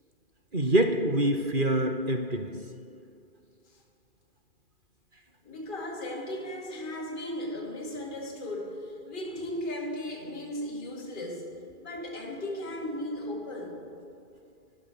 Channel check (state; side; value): late; left; 2.4 ms